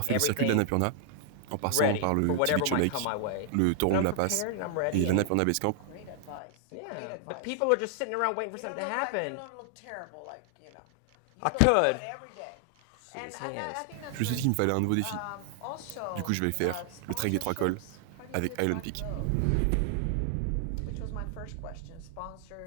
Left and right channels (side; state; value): both; different; correlation 0.00